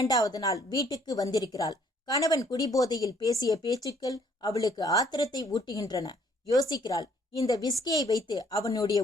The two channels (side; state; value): both; normal; correlation 0.63